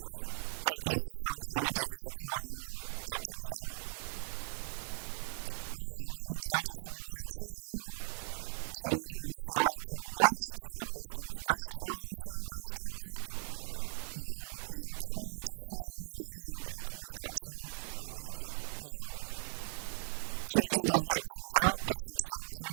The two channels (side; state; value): left; silent; digital silence